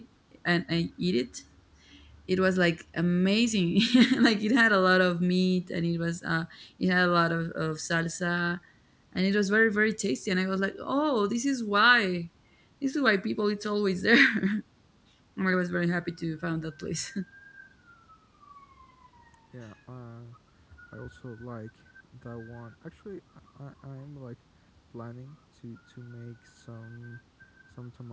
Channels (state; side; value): identical; both; correlation 1.00